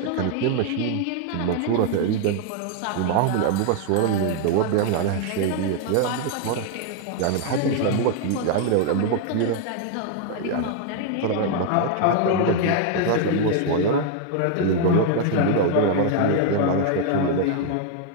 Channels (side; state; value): both; different; correlation 0.00